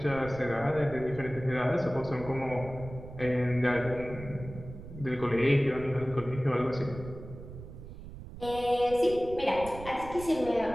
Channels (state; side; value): noise; right; rumble, 13 dB below the sound